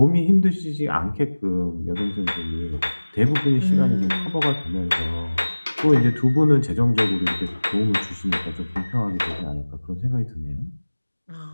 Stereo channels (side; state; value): both; inverted; correlation -1.00